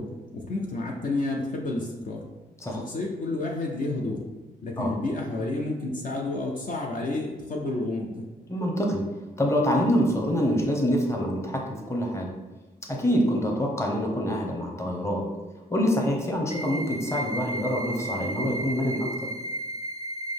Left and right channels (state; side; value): normal; both; correlation 0.64